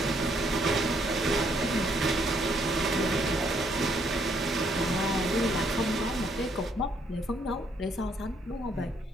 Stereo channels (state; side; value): normal; both; correlation 0.70